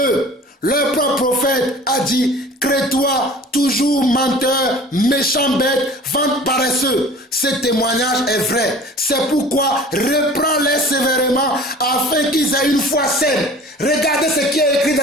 leur propre prophète, a dit: crée-toi, toujours menteur, méchant bête, vente paresseux. Ce témoignage est vrai. C'est pourquoi reprends-les sévèrement afin qu'ils aient une foi saine. Regardez ce qui est écrit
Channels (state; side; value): normal; both; correlation 0.44